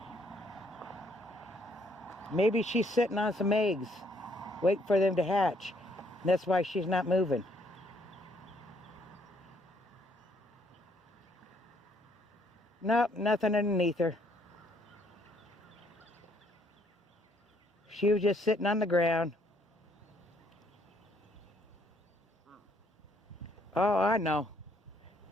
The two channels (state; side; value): normal; both; correlation 0.68